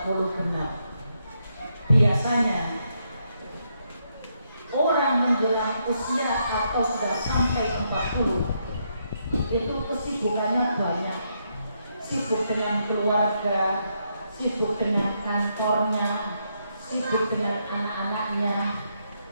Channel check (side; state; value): both; inverted; correlation -0.78